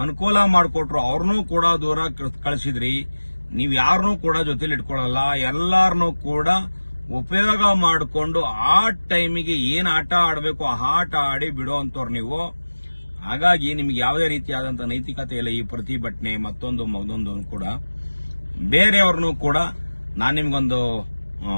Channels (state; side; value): inverted; both; correlation -1.00